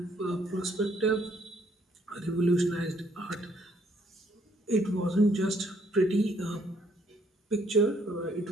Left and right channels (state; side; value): normal; both; correlation 0.67